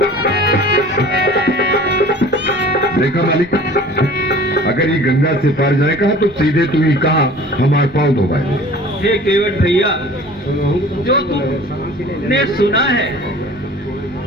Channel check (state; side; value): normal; both; correlation 0.45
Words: देखा मालिक, अगर ये गंगा से पार जाएगा तो सीधे तू ही कहा हमारे पाँव धोवाए। हे केवट भैया, जो तुमने सुना है